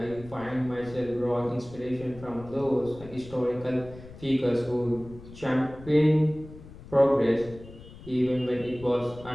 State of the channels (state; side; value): noise; left; rumble, 17 dB below the sound